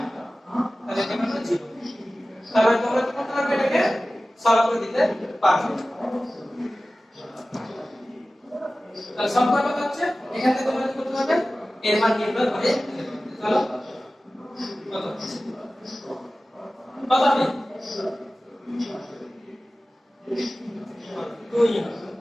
তাহলে এটা হলো 0 তাহলে তোমরা কি করতে পারবে এটাকে সলভ করে দিতে পারবে তাহলে সংখ্যা কত হচ্ছে এখান থেকে তোমরা কি করতে পারবে এর মান নির্ণয় করে চলো কত কত হবে 2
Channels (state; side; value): normal; both; correlation 0.96